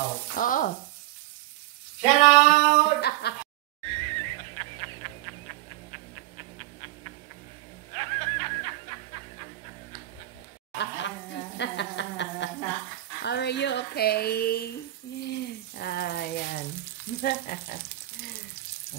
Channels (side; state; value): left; quieter; 15.8 dB